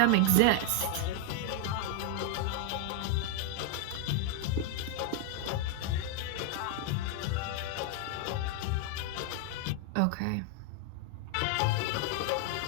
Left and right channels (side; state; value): both; different; correlation 0.00